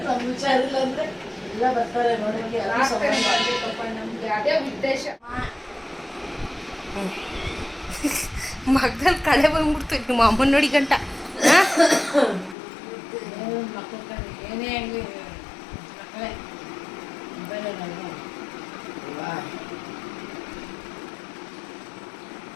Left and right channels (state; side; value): drops out; right; at 12.6 s